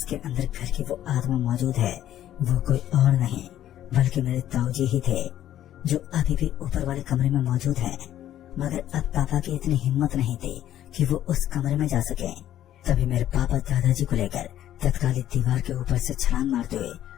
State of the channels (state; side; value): quieter; right; 12.0 dB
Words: के अंदर घर की वो आत्मा मौजूद है वो कोई और नहीं बल्कि मेरे ताऊजी ही थे, जो अभी भी ऊपर वाले कमरे में मौजूद हैं। मगर अब पापा की इतनी हिम्मत नहीं थी कि वो उस कमरे में जा सके। तभी मेरे पापा दादाजी को लेकर तत्कालिक दीवार के ऊपर से छलांग मारते हुए